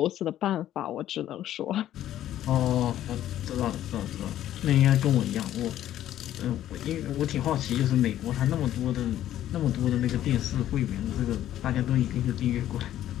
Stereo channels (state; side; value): quieter; right; 12.3 dB